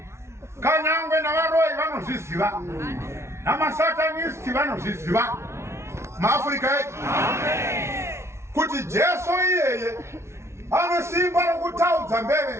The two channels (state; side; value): late; left; 0.13 ms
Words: kanyangwe navaroi vanozviziva namasatanisti vanozviziva maAfrika edu kuti Jesu iyeye ane simba rokutaudza